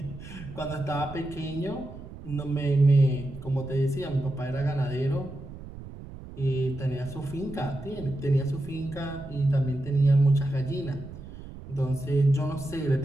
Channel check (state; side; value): noise; right; rumble, 14 dB below the sound